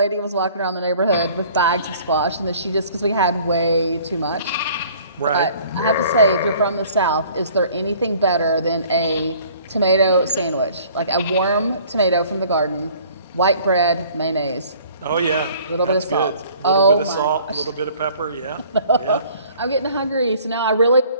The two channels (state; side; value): inverted; both; correlation -0.53